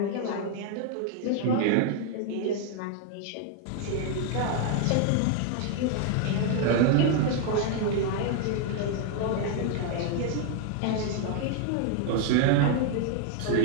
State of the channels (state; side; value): different; both; correlation 0.00